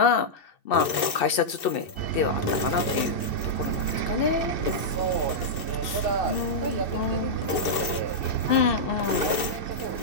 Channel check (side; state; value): right; late; 2.6 ms